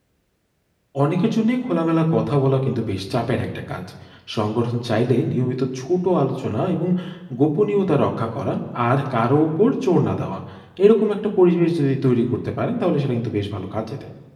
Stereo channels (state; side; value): identical; both; correlation 1.00